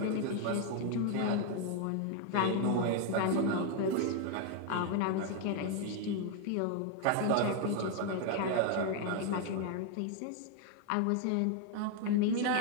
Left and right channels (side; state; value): both; different; correlation 0.00